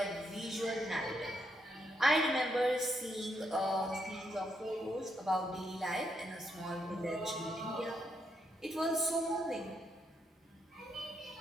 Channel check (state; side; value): normal; both; correlation 0.78